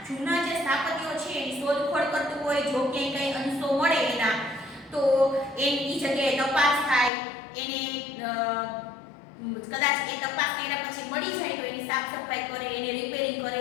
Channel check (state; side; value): drops out; right; at 7.1 s